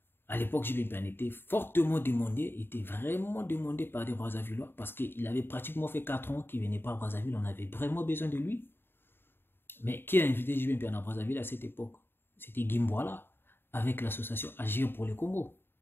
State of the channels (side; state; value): right; late; 0.10 ms